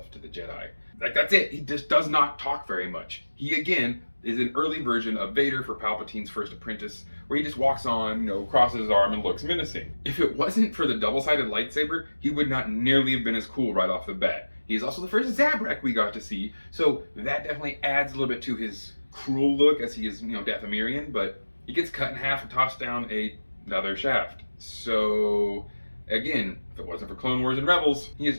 to the Jedi." Like, that's it. He just does not talk very much. He, again, is an early version of Vader for Palpatine's first apprentice, where he just walks on, crosses his arm and looks menacing. If it wasn't for the double-sided lightsaber, he would not nearly have been as cool right off the bat. He's also the first Zabrak we got to see, so that definitely adds a little bit to his cruel look, as he is, Dathomirian, but he gets cut in half and tossed down another shaft. So, again, if it wasn't for Clone Wars and Rebels, he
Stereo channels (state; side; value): inverted; both; correlation -1.00